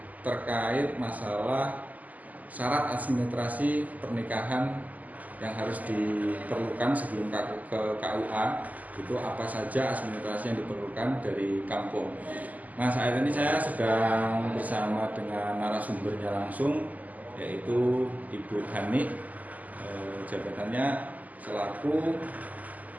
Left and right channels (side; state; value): left; late; 0.078 ms